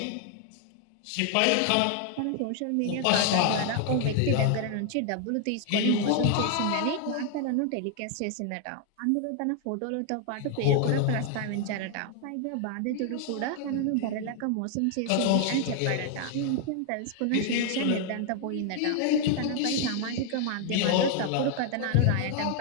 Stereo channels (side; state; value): both; different; correlation 0.00